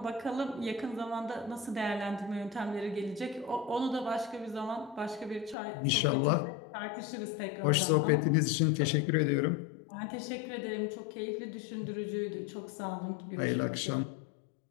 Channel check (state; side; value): drops out; right; at 5.6 s